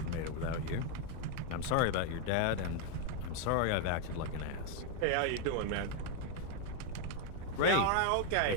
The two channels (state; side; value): different; both; correlation 0.01